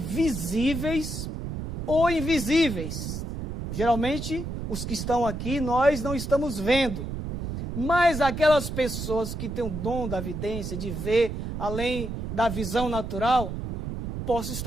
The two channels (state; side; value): noise; right; rumble, 5 dB below the sound